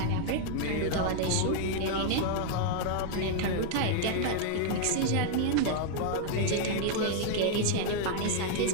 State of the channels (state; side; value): different; both; correlation 0.00